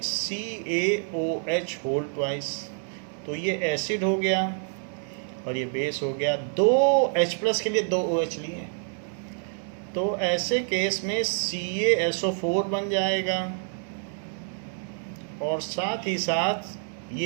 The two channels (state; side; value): silent; left; 58 dB below the other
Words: CaOH होल ट्वाइस, तो ये एसिड हो गया और ये बेस हो गया। 2 H+ के लिए 2 OH लिए, तो ऐसे केस में CaSO4 बन जाएगा और साथ ही साथ